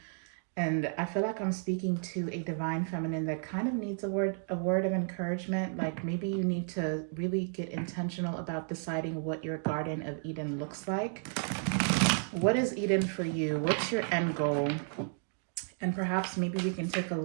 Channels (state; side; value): silent; left; 56 dB below the other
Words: And I feel like I'm speaking to a divine feminine that kind of needs a word of encouragement. Like, maybe you need to really get intentional about deciding what your Garden of Eden looks like. What is Eden for you? What's your end goal? And perhaps maybe we can take a